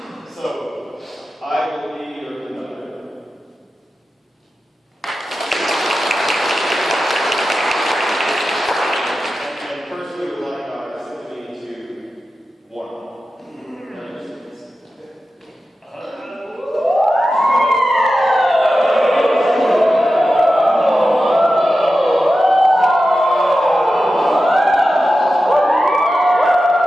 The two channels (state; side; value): normal; both; correlation 0.92